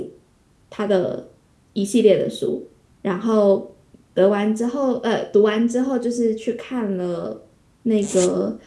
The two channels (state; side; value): identical; both; correlation 1.00